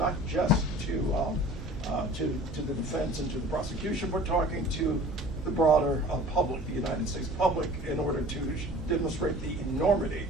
just to the defense and to the prosecution, but talking to the broader public, the United States public, in order to demonstrate the enormity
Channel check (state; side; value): normal; both; correlation 0.45